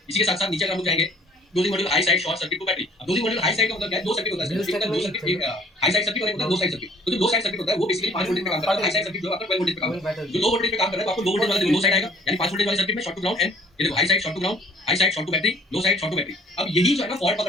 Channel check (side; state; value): both; normal; correlation 0.55